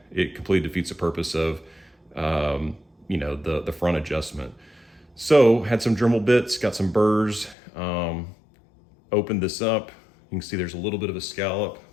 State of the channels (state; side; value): drops out; right; at 7.6 s